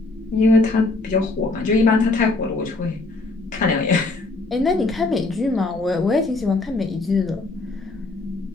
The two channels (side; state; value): right; quieter; 3.3 dB